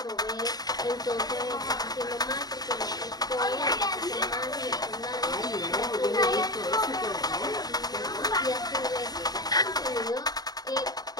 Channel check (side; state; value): right; late; 0.19 ms